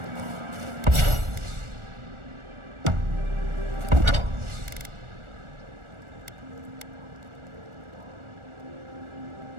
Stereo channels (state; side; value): late; left; 1.4 ms